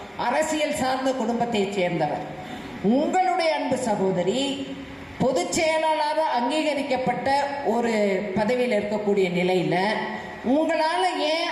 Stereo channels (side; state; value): both; identical; correlation 1.00